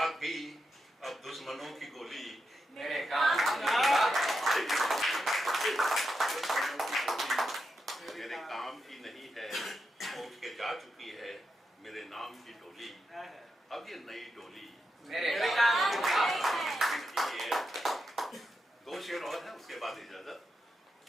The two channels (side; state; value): both; normal; correlation 0.86